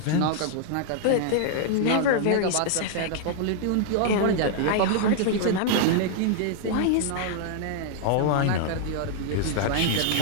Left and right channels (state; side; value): different; both; correlation -0.01